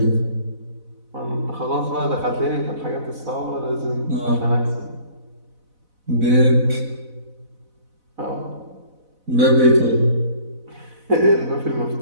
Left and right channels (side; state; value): left; late; 4.0 ms